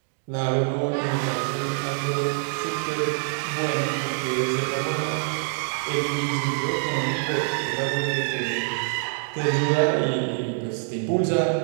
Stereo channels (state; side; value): silent; left; digital silence